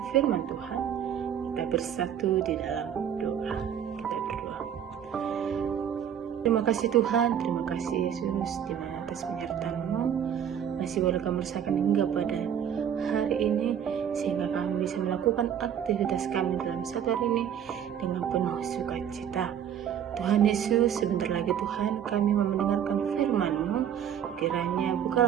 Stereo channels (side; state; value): left; quieter; 9.1 dB